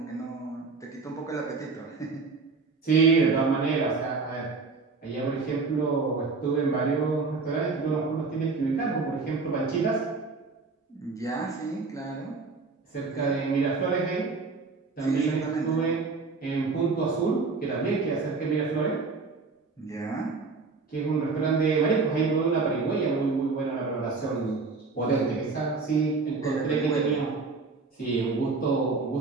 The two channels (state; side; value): quieter; left; 4.2 dB